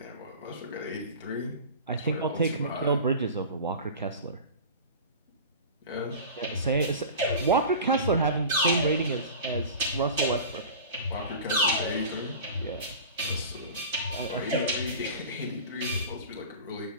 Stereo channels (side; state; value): both; inverted; correlation -0.35